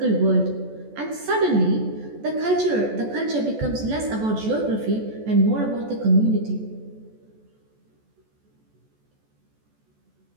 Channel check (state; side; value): late; left; 14 ms